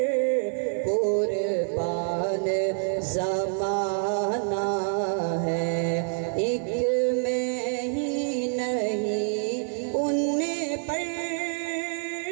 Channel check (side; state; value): left; silent; 60 dB below the other